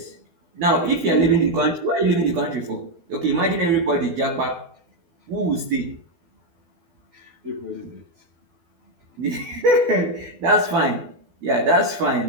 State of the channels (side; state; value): left; late; 12 ms